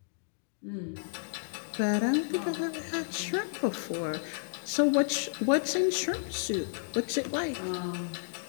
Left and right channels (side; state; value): right; silent; digital silence